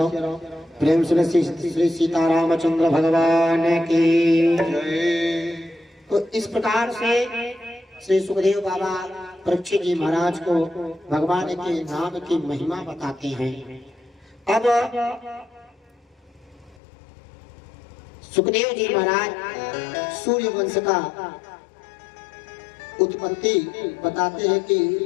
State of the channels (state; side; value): drops out; right; at 16.8 s